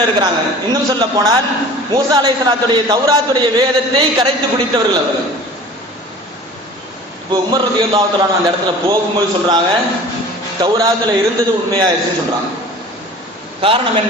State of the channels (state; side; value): normal; both; correlation 0.42